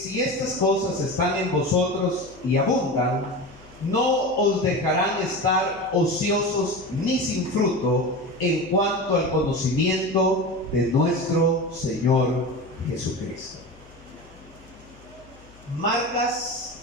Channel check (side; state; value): left; noise; hum, 25 dB below the sound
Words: estas cosas están en vosotros y abundan, no os dejarán estar ociosos ni sin fruto en cuanto al conocimiento de nuestro Señor Jesucristo.